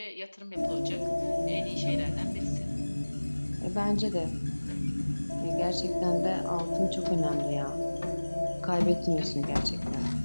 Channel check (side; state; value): both; inverted; correlation -1.00